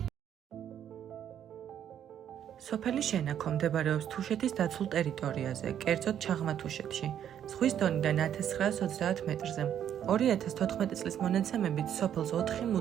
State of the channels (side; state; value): left; quieter; 9.8 dB